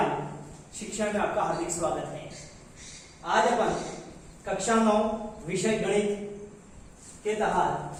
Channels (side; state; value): both; identical; correlation 1.00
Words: शिक्षा में आपका हार्दिक स्वागत है। आज अपन कक्षा 9 विषय गणित के